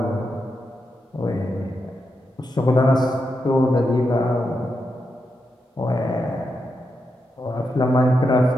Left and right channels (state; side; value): normal; both; correlation 0.85